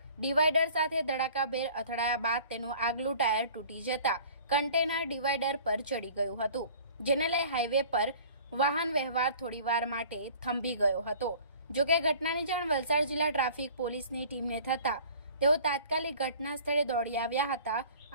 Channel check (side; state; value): both; inverted; correlation -0.48